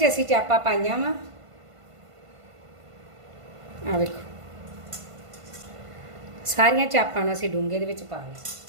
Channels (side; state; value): left; late; 1.5 ms